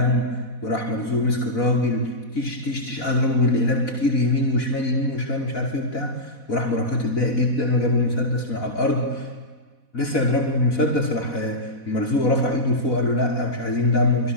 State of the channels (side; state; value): right; late; 4.1 ms